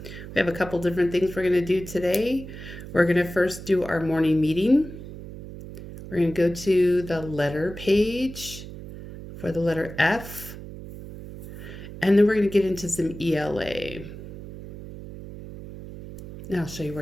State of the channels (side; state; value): right; noise; hum, 12 dB below the sound